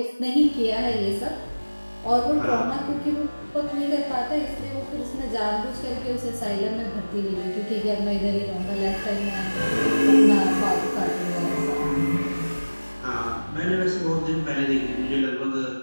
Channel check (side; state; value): both; inverted; correlation -1.00